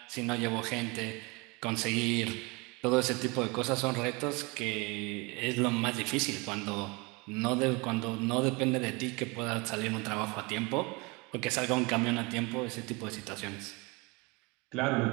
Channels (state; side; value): quieter; left; 27.3 dB